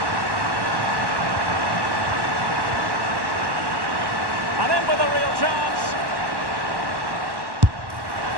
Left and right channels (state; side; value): late; left; 1.1 ms